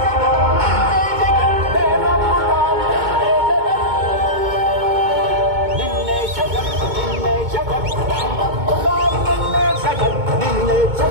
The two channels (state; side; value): late; left; 2.2 ms